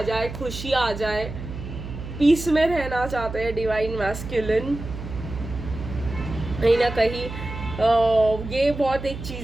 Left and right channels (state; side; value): noise; right; hum, 9 dB below the sound